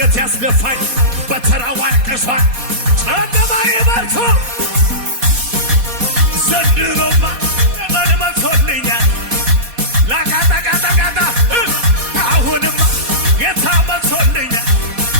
ያስደፋኝ በተራው አልቅሷል ጨለማዬ በርቶ ዘንድሮማ ዘመን መቶልኛል ላቃጣቃጣቃጣ አሁንማ ጌታ መቶልኛል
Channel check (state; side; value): late; left; 4.2 ms